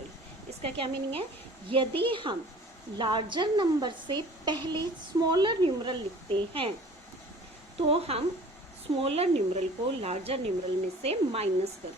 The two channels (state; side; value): normal; both; correlation 0.47